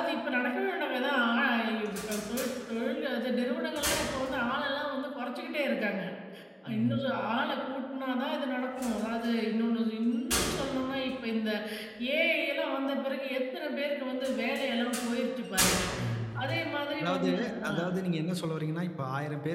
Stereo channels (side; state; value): both; identical; correlation 1.00